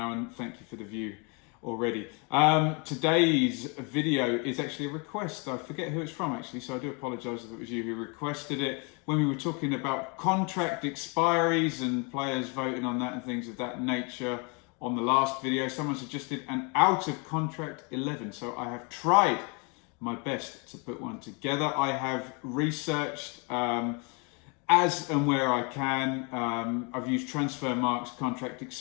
and thank you for the view already. Today's video is actually a request. I forget who it's from actually, so I do apologise if it was you who requested it. When we were talking about contract expiries and players voting on that and things of that nature on the last video, someone suggested an out of contract 11. So I have tried my best to put one together. I have researched as and where I can. I've used Transfermarkt's contract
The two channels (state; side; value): quieter; right; 33.2 dB